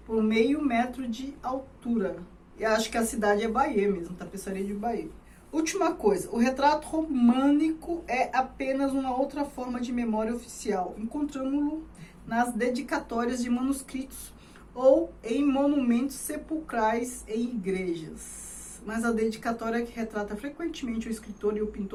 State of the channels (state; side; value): identical; both; correlation 1.00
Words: por meio metro de altura. E acho que a cidade é Bayeux mesmo, tapeçaria de Bayeux. Última coisa, o retrato românico é apenas uma outra forma de memória oficial, encontramos-lo nas dedicatórias de manuscritos ou em monumentos sepulcrais em igrejas. Mas a dedicatória que retrata frequentemente o escritor e o